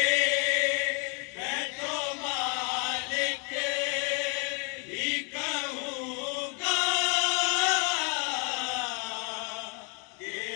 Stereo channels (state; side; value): quieter; right; 36.6 dB